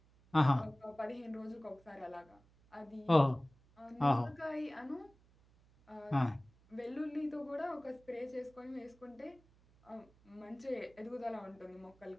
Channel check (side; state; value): right; noise; hum, 29 dB below the sound